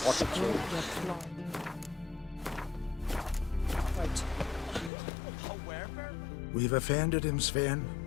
We've offended him, Sven.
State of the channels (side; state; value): right; drops out; at 4.9 s